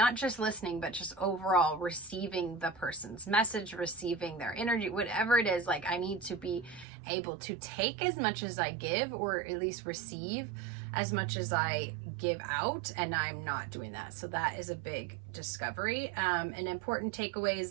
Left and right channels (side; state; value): left; drops out; at 6.9 s